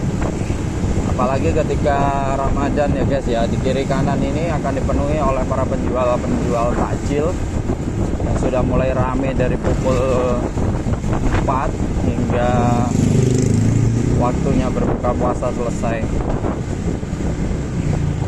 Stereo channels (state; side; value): identical; both; correlation 1.00